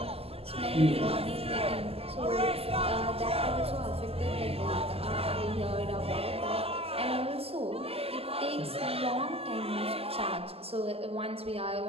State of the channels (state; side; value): late; left; 0.29 ms